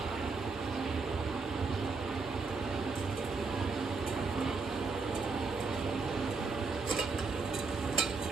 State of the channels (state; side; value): quieter; left; 4.3 dB